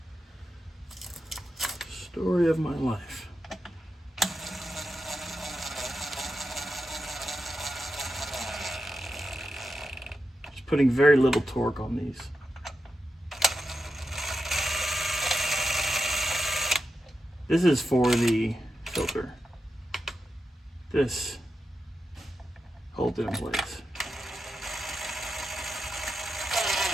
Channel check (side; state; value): both; normal; correlation 0.88